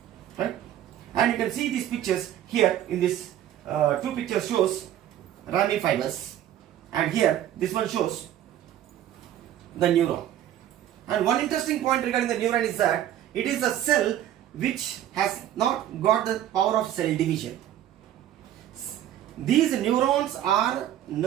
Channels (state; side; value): quieter; left; 11.7 dB